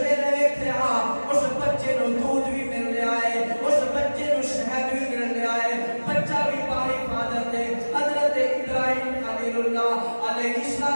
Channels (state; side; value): inverted; both; correlation -1.00